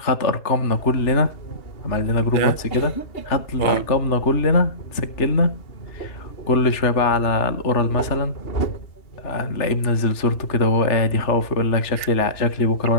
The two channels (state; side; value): late; right; 3.3 ms